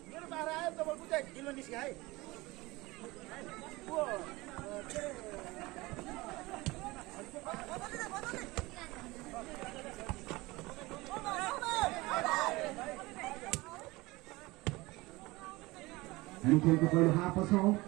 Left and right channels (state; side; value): quieter; left; 21.5 dB